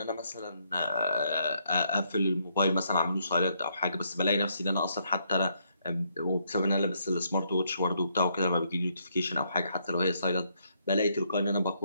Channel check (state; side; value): inverted; both; correlation -0.73